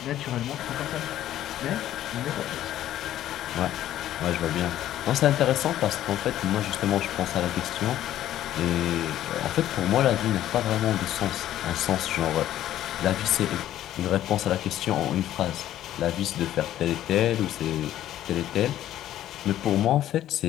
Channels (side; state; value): right; quieter; 12.6 dB